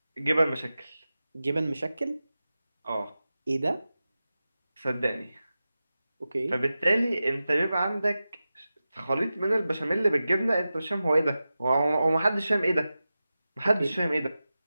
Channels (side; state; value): both; inverted; correlation -0.94